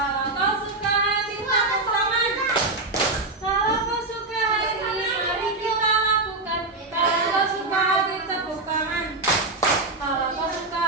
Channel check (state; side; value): quieter; left; 3.1 dB